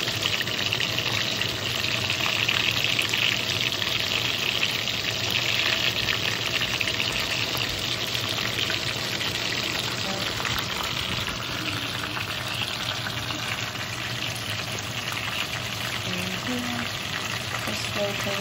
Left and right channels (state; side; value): identical; both; correlation 1.00